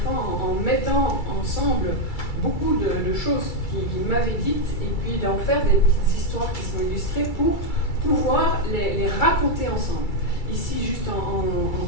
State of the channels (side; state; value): right; late; 2.3 ms